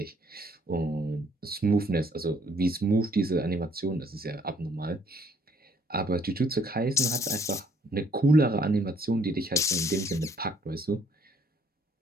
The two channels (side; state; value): both; normal; correlation 0.64